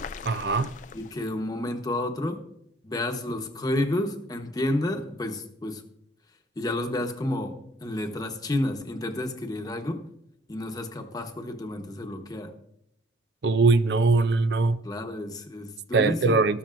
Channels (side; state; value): both; normal; correlation 0.55